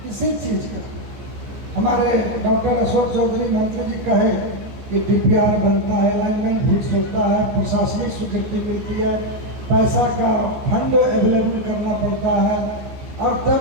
किसी चीज़ का। हमारे डॉक्टर अशोक चौधरी मंत्री जी कहे कि DPR बनता है, अलाइनमेंट फिक्स होता है, प्रशासनिक स्वीकृति मिलती है, पैसा का फंड अवेलेबल करना पड़ता है, और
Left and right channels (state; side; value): late; left; 14 ms